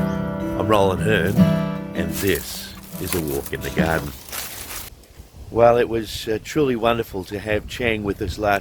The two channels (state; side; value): identical; both; correlation 1.00